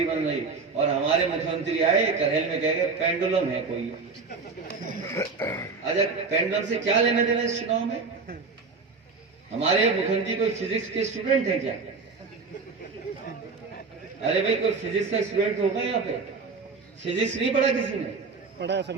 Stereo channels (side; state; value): left; quieter; 4.5 dB